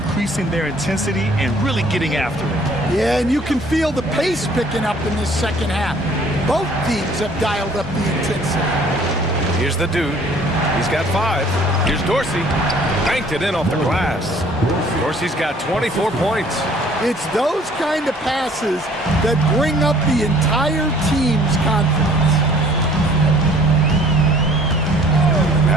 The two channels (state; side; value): normal; both; correlation 0.56